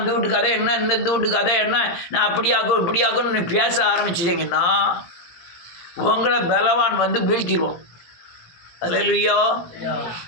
வீட்டு கதை என்ன, இந்த வீட்டு கதை என்ன, நான் அப்படியாக்கும் இப்படியாக்கும்னு நீ பேச ஆரம்பிச்சிட்டிங்கன்னா உங்களை பலவான் வந்து வீழ்த்திடுவோம். அல்லேலூயா.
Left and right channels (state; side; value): late; right; 17 ms